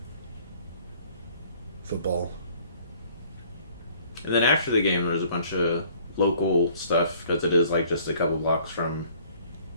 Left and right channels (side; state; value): both; inverted; correlation -0.57